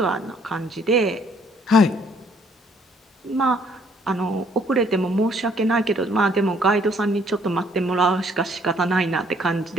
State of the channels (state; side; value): normal; both; correlation 0.64